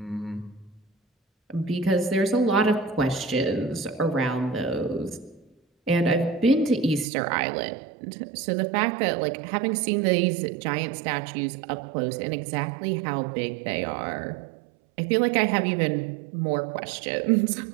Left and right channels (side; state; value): left; drops out; at 7.1 s